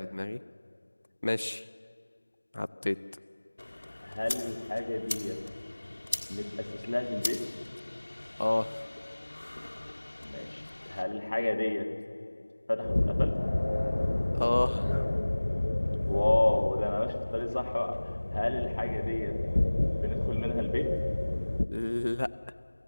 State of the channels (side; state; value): both; inverted; correlation -1.00